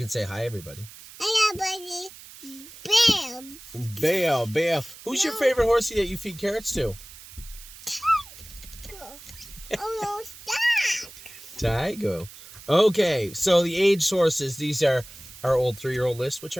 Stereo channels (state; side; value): noise; right; hiss, 18 dB below the sound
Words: say hi, everybody. Hi, everybody. Bam. Bale. Who's your favorite horsey that you feed carrots to? Oh, no, stop. Tygo. Okay, so the aged horses, these are our old 3-year-old list, which